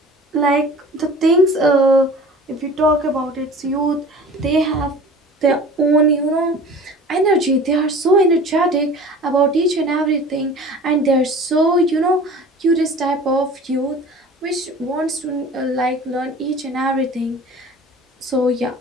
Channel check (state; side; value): normal; both; correlation 0.42